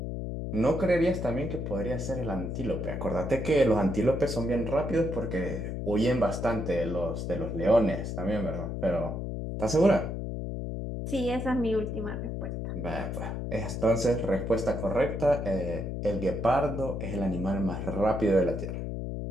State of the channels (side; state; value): left; noise; hum, 4 dB below the sound